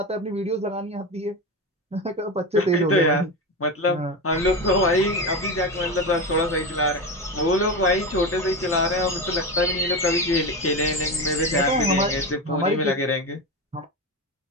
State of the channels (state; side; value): normal; both; correlation 0.20